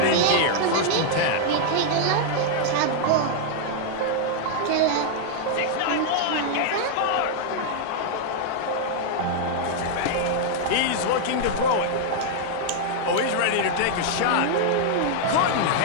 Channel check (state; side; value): different; both; correlation 0.00